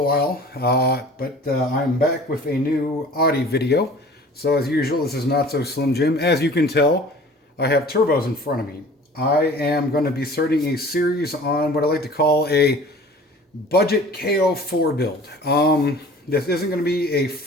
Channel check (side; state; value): both; normal; correlation 0.45